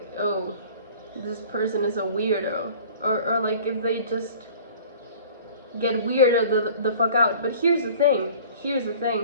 oh, this person is a weirdo, or like if they just get weirded the fuck out. But here's the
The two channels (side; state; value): both; inverted; correlation -0.47